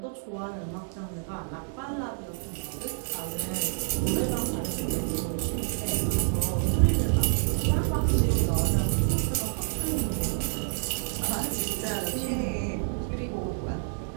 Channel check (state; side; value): silent; left; digital silence